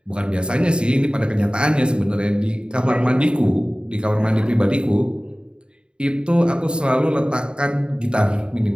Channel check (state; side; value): late; left; 0.051 ms